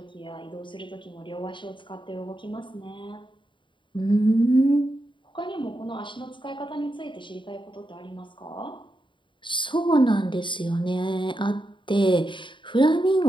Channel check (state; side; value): late; right; 0.23 ms